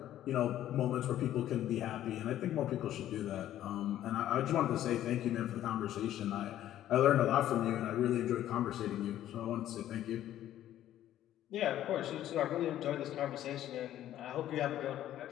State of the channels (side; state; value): right; quieter; 12.4 dB